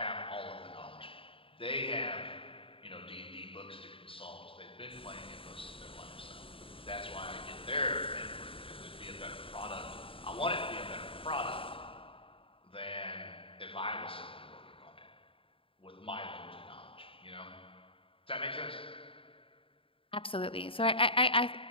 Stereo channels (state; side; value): late; right; 0.26 ms